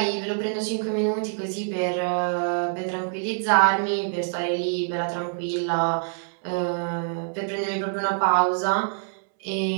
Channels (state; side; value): silent; left; 61 dB below the other